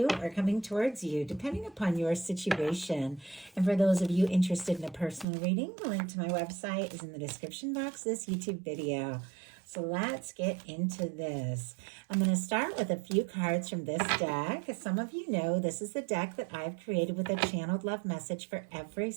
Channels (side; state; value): left; drops out; at 5.2 s